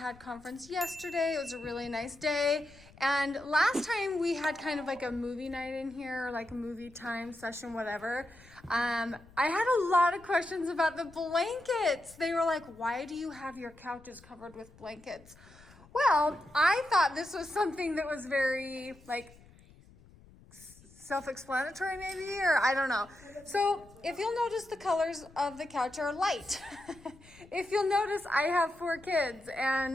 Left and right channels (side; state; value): left; noise; rumble, 24 dB below the sound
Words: conference yesterday. It was a really nice day. And last time we had kind of like a movie night in here, like a movie time session, whatever. I had a lot of questions about the blankets. They were like, why do you have your couches covered with blankets? Well, I thought this was something that was very like self-explanatory maybe, or I don't know. So if you'll notice, the colors of the couch are light. If you'll notice, I have 4 kids,